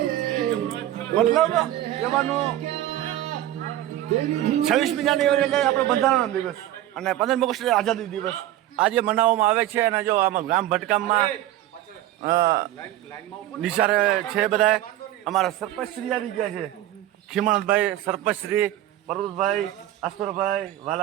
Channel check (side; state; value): left; quieter; 13.7 dB